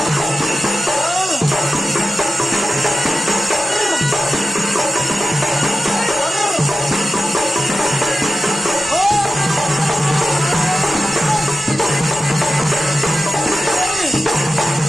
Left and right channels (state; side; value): normal; both; correlation 0.93